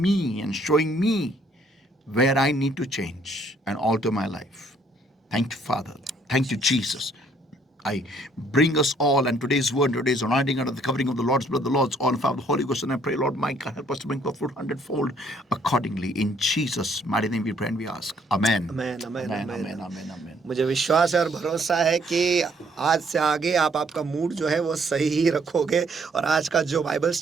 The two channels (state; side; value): normal; both; correlation 0.65